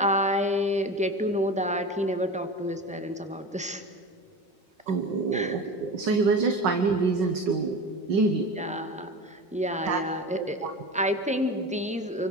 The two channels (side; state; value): both; normal; correlation 0.30